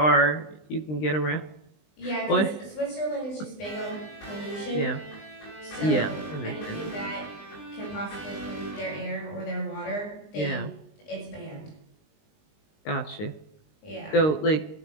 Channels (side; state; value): right; late; 20 ms